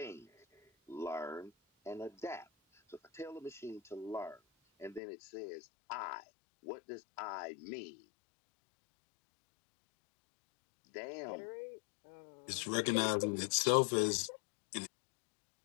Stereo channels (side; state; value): right; drops out; at 5.0 s